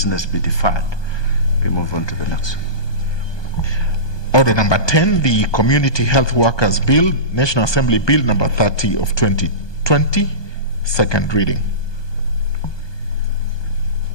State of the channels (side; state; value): right; late; 1.2 ms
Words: be deferred. We move on to the next. Order number 10, the Community Health Workers Bill, National Assembly Bill number 30 of 2020, second reading.